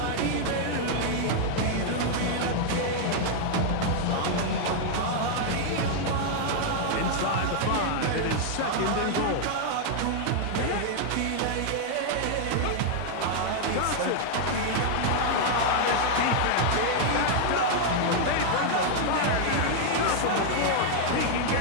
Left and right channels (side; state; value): both; different; correlation 0.00